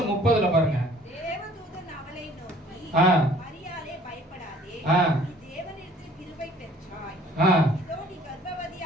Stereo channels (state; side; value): normal; both; correlation 0.55